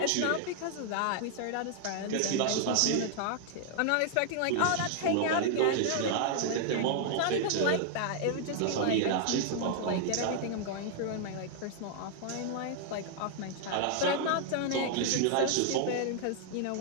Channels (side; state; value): both; different; correlation 0.00